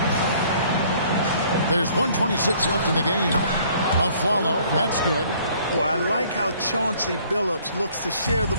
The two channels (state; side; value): inverted; both; correlation -0.58